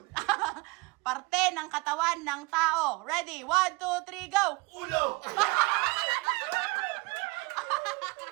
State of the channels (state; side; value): quieter; left; 26.3 dB